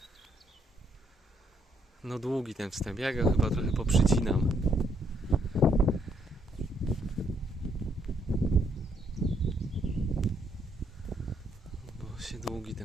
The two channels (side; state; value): both; normal; correlation 0.72